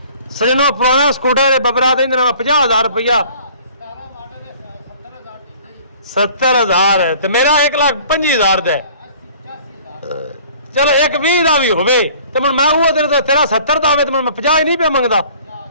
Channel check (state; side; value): inverted; both; correlation -0.51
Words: ਸਜਣੋ, ਪੁਰਾਣਾ ਸਕੂਟਰ ਬਬਰਾ ਦੇ 50,000 ਰੁਪਇਆ 70,000 ਤੇ ਮੇਰਾ 1,25,000 ਦਾ। ਚਲੋ 1,20 ਦਾ ਵੀ ਹੋਵੇ ਤੇ ਹੁਣ ਮੈਂ ਉਹ ਦਿਨ ਤੇਰਾ 70 ਦਾ ਹੋਵੇ ਤੇ ਮੈਂ 50 ਹੀ ਨਹੀਂ ਪਿਆ ਮੰਗਦਾ।